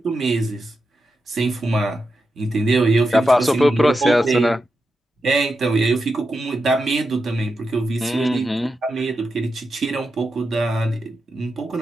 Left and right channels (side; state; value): both; normal; correlation 0.88